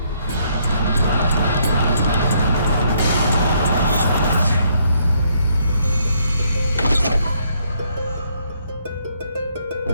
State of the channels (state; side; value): inverted; both; correlation -0.71